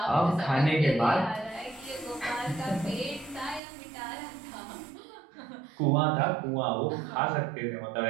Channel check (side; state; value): left; drops out; at 3.6 s